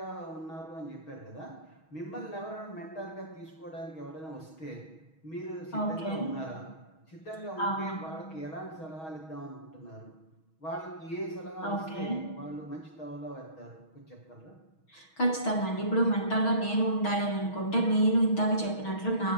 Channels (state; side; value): late; right; 6.3 ms